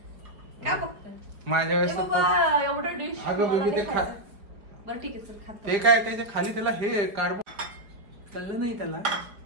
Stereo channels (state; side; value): late; left; 4.8 ms